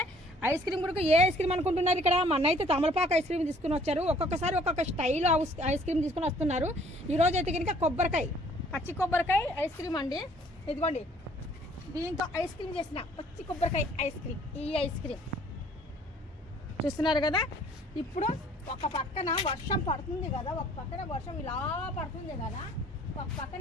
ఐస్ క్రీమ్ కూడా ఏ ఐస్ క్రీమ్ అనుకుంటున్నారు ఇక్కడ మన అయితే తమలపాకు ఐస్ క్రీమ్ తీసుకుని వచ్చారు. ఒక్కొక్కసారి ఒక్కొక్క స్టైల్ ఐస్ క్రీమ్ తీసుకుని వస్తున్నారు. ఈరోజు అయితే కనుక పచ్చి కొబ్బరికాయ ఐస్ క్రీమ్ అండి. ఇదిగోండి దీంతో ఐస్ క్రీమ్ చేసిన పచ్చి కొబ్బరికాయ ఐస్ క్రీమ్. ఈ ఐస్ క్రీమ్ చూస్తున్నారు కదా. ఇప్పుడు ఒక పక్కన వర్షం పడుతుంది కదా, ఒక పక్కన వర్షం ఇలా పడుతుంది కదా, ఒక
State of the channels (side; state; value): both; normal; correlation 0.58